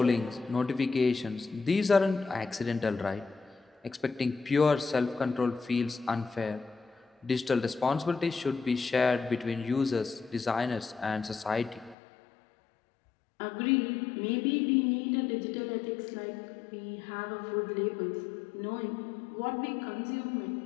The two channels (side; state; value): right; drops out; at 12.0 s